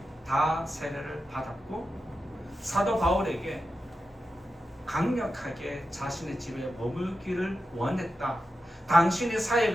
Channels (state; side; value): normal; both; correlation 0.91